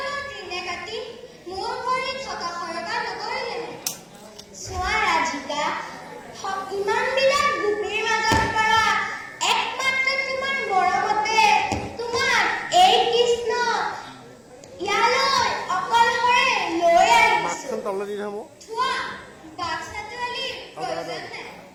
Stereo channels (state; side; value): identical; both; correlation 1.00